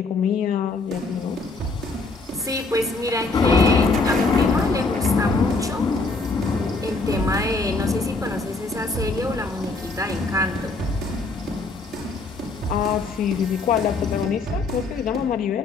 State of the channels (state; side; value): quieter; right; 3.6 dB